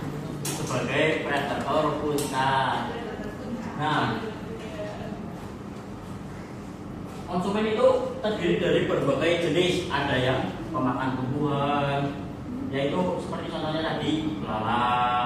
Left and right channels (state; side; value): identical; both; correlation 1.00